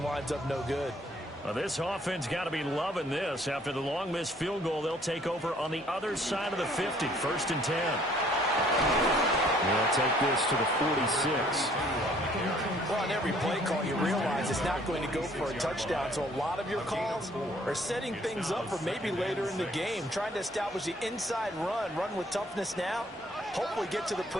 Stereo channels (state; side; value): normal; both; correlation 0.60